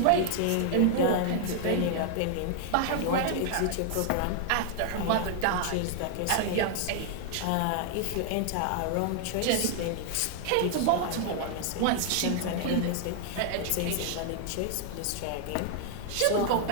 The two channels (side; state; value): both; different; correlation 0.00